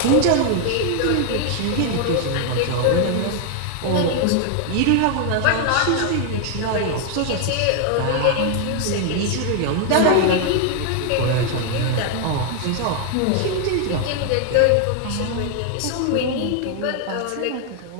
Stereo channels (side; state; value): both; different; correlation 0.00